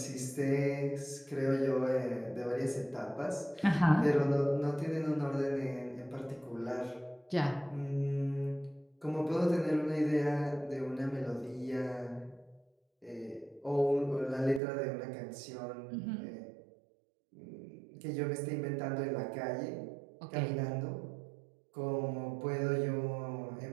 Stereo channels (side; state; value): left; drops out; at 14.6 s